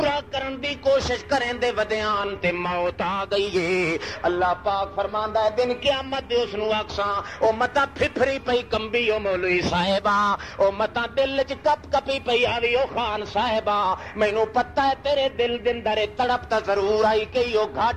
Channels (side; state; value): both; identical; correlation 1.00